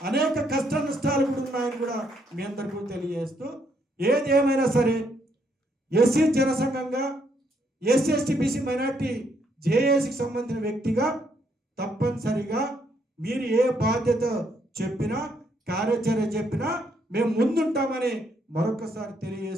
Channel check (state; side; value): normal; both; correlation 0.73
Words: అనేక కష్ట నష్టాలు కూడా ఉన్నాయని కూడా మీ అందరికీ తెలియజేస్తూ, ఏది ఏమైనా సరే ఎస్సీ జనసంఘంగా ఎస్సీ ఎస్టీ బీసీ మైనార్టీ జేఏసీకి సంబంధించిన వ్యక్తిగా తప్పనిసరిగా మీరు ఏ బాధ్యత చెప్పినా కార్యాచరణ చెప్పినా మేము ముందుంటామని మరొకసారి